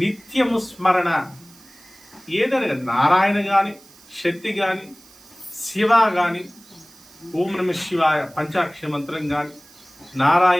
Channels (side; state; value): right; noise; hiss, 25 dB below the sound